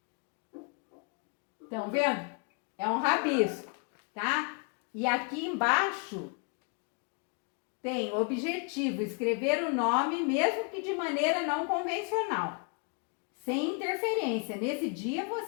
Estão vendo? É um rabisco, tá? E aqui embaixo tem objetivo, escrever o nome, mesmo que de maneira não convencional, sem interferência. Nesse dia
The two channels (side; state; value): right; quieter; 35.2 dB